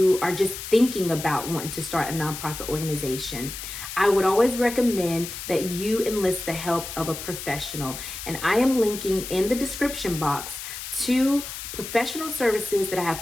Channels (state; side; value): noise; left; hiss, 9 dB below the sound